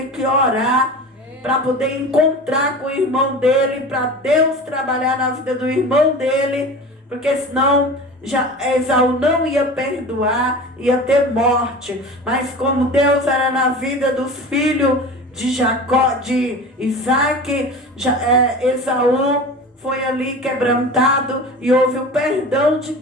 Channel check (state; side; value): normal; both; correlation 0.34